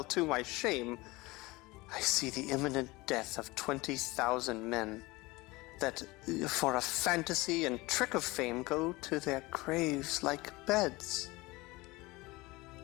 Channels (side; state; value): right; quieter; 21.9 dB